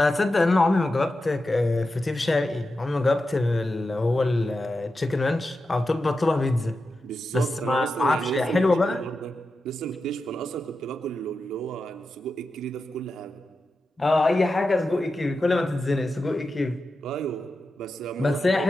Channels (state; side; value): normal; both; correlation 0.90